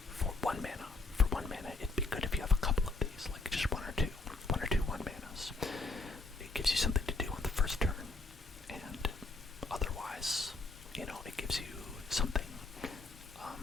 for one mana, it'd be good if you have a couple of these, like just one or two 1-manas. It gives you something to do on the first turn, and otherwise, it gives you something.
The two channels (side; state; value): right; quieter; 3.4 dB